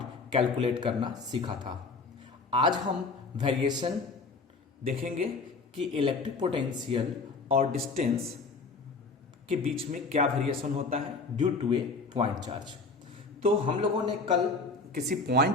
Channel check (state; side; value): quieter; right; 4.0 dB